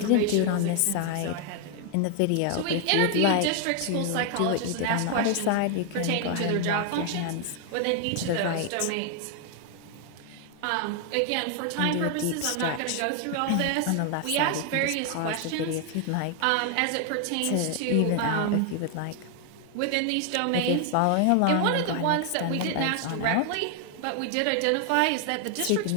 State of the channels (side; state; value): both; different; correlation 0.00